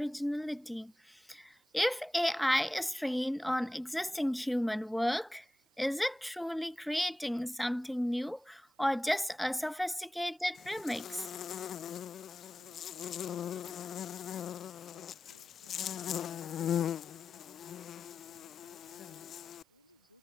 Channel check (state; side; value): normal; both; correlation 0.95